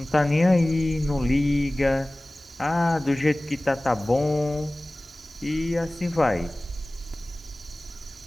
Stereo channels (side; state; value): both; normal; correlation 0.98